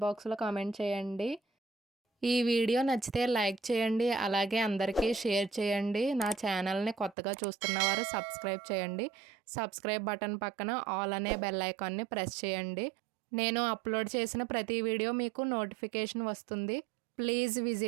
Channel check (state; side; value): drops out; left; at 7.2 s